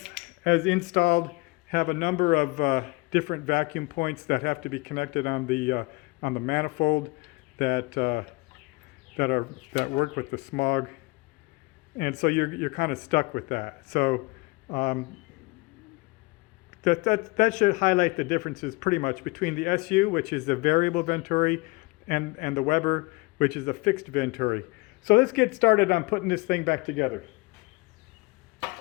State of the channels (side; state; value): right; quieter; 24.9 dB